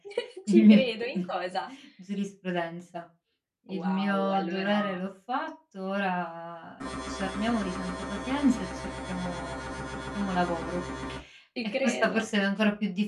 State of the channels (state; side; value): identical; both; correlation 1.00